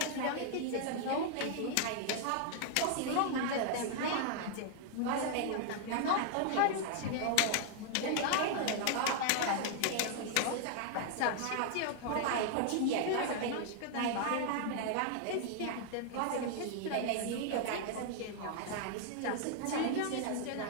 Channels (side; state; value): both; different; correlation 0.00